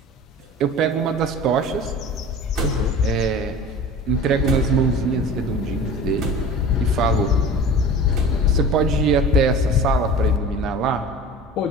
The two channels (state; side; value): normal; both; correlation 0.37